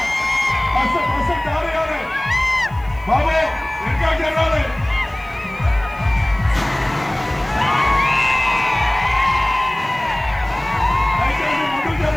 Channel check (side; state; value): left; noise; hiss, 30 dB below the sound